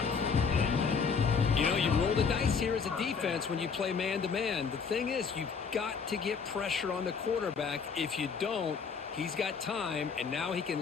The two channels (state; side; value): quieter; right; 5.7 dB